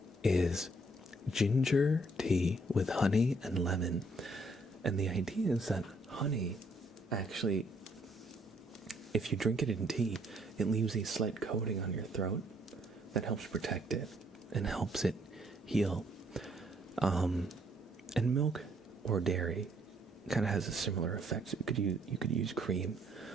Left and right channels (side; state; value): both; normal; correlation 0.67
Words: is ginger tea with honey and lemon. And the idea is that honey actually, if you drink it in tea, it leaves a slight coating on your throat that helps protect it and helps it heal. And milk or dairy kind of has a similar effect. So you could use cream